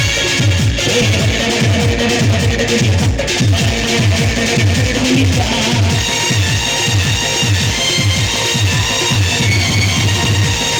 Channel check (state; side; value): identical; both; correlation 1.00